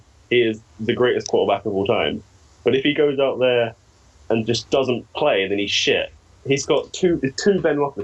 he is the greatest quarterback of all time. But if he goes out there and just doesn't play, then he's shit. He's got two Ben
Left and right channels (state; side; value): identical; both; correlation 1.00